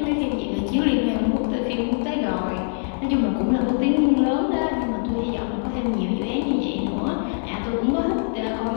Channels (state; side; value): silent; right; digital silence